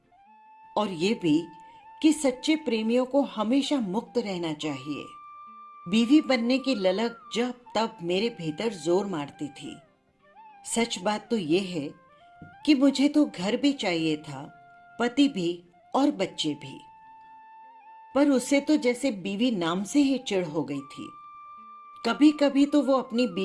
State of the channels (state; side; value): identical; both; correlation 1.00